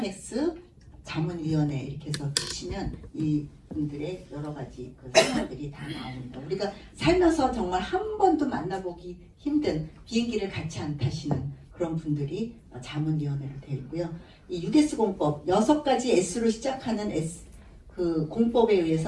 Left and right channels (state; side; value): identical; both; correlation 1.00